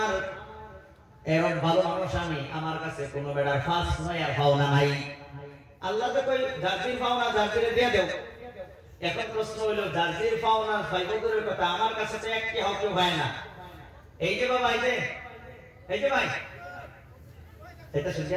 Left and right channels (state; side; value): identical; both; correlation 1.00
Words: এরকম ভালো মানুষ আমি, আমার কাছে কোনো বেড়ার ফাঁস নয় আর পাওনা নাই। আল্লাহ তো কই জারদির পাওনা জারদিরে দিয়ে দেও। এখন প্রশ্ন হইল জারদির পাওনা ফাইবুরের কথা, আমার কাছে তো একটি হক হয় না। এই যে বাবা, এই যে ভাই, এটা